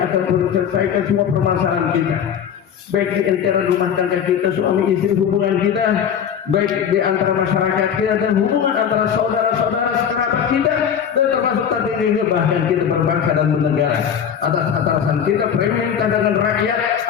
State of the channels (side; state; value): right; quieter; 8.1 dB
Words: menyelesaikan semua permasalahan kita, baik di antara rumah tangga kita, suami istri, hubungan kita, baik di antara masyarakat kita, dan hubungan antara saudara-saudara sekerabat kita, dan termasuk tadi juga bahkan kita berbangsa dan bernegara. Atas atasan kita pemerintah dengan rakyat,